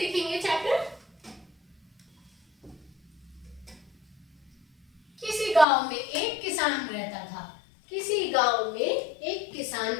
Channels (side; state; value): right; drops out; at 5.7 s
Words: चैप्टर। किसी गांव में एक किसान रहता था। किसी गांव में एक किसान